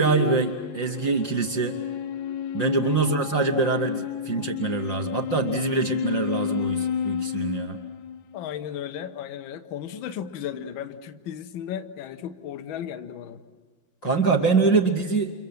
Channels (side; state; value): right; late; 5.6 ms